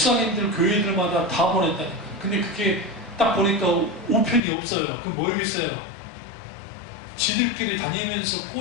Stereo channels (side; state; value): right; drops out; at 4.4 s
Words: 교회들마다 다 보냈다니까. 근데 그게 딱 보니까 우편이 없어요. 그럼 뭐겠어요? 지들끼리 다니면서